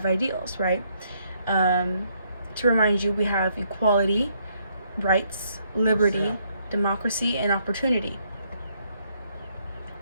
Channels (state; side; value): inverted; both; correlation -0.71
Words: ideals, right? Um, to remind you, we have equality, rights, liberty, democracy, and opportunity.